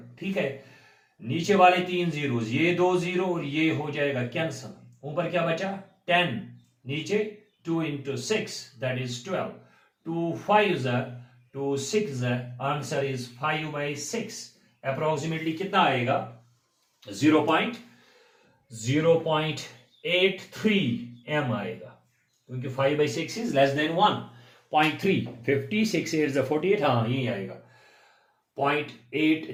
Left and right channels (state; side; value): identical; both; correlation 1.00